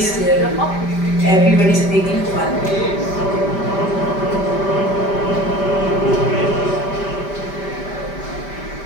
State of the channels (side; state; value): right; late; 5.1 ms